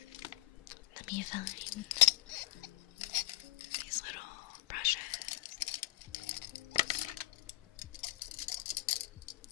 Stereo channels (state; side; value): quieter; right; 17.5 dB